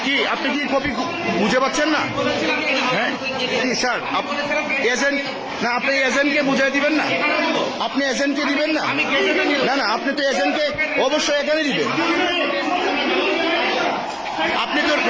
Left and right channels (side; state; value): both; identical; correlation 1.00